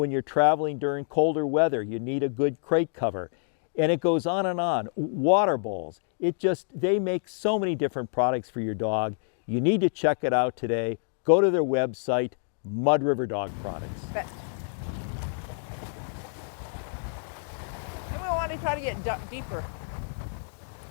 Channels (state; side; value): silent; right; digital silence